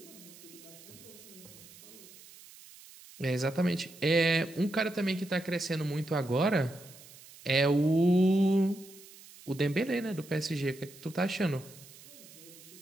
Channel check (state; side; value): noise; right; hiss, 20 dB below the sound